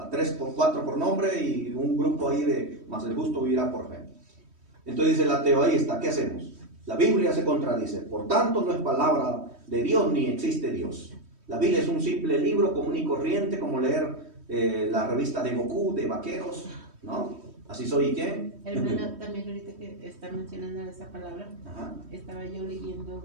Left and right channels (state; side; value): late; left; 3.1 ms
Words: 3 por 4 por nombre y un grupo ahí de, más el justo vivirá por fe. Entonces dice el ateo, ahí está, ¿qué hacemos? La Biblia se contradice, por tanto no es palabra de Dios ni existe Dios. La Biblia es un simple libro común y corriente, como leer la revista de Goku, de vaqueros, ¿no? Así soy, ¿qué? Hermana, también ahorita que está mencionando esa palabra, Ajá. estaba yo